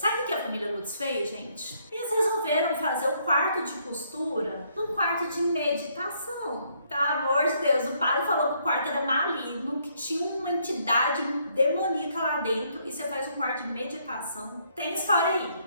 o que a família Lutz fez, gente? Eles resolveram fazer o quarto de costura num quarto de meditação. Tá, amor de Deus, o padre falou que o quarto era maligno, que tinha uma entidade demoníaca lá dentro e você faz um quarto de meditação. Tem história aí.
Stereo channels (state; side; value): inverted; both; correlation -0.70